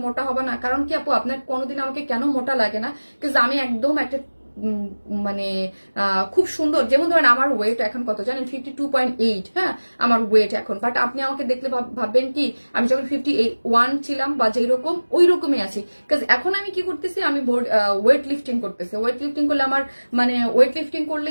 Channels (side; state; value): both; inverted; correlation -1.00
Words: মোটা হবে না? কারণ কি আপু, আপনার কোনোদিন আমাকে কেন মোটা লাগে না? বিকজ আমি একদম একটা মানে খুব সুন্দর, যেমন ধরেন আমার ওয়েট এখন কত জানেন, 52.8। হ্যাঁ, আমার ওয়েট এখন, বাট আপনি আমাকে দেখলে ভাববেন কি আমি যখন 51 ছিলাম বা যেই রকম ওই রকমই আছি। বিকজ এখন আমি কি করতেছি, আমি ওয়েট লিফটিং করতেছি। ওয়েট লিফটিং করলে আমার মানে ওয়েট লিফটিং